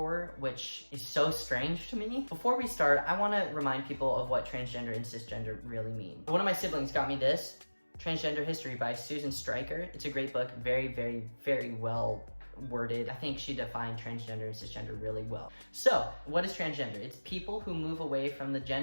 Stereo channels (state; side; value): inverted; both; correlation -1.00